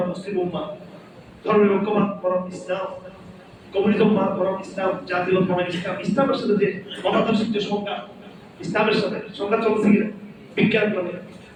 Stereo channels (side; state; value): both; identical; correlation 1.00